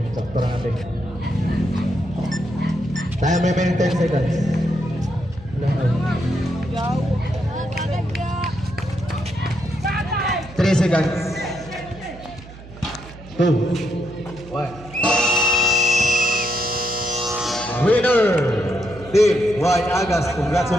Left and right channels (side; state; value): right; noise; hum, 18 dB below the sound